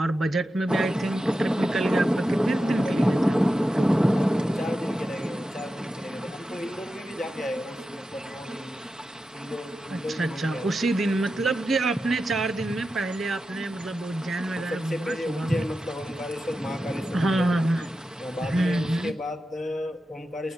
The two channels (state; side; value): normal; both; correlation 0.91